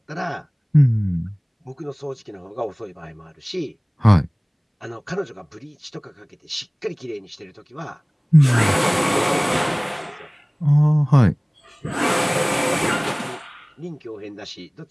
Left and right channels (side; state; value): both; identical; correlation 1.00